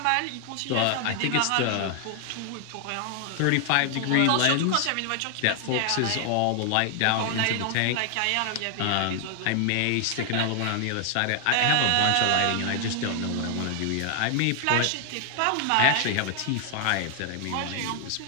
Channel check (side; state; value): both; different; correlation 0.00